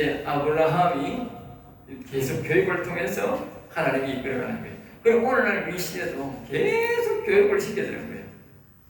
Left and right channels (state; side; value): identical; both; correlation 1.00